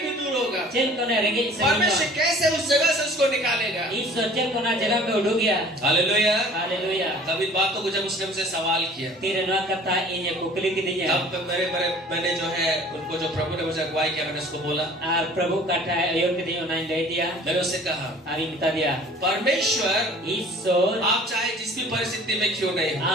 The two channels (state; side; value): normal; both; correlation 0.49